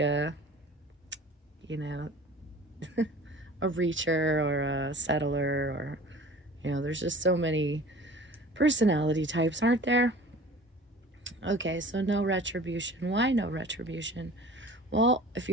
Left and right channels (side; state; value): both; normal; correlation 0.43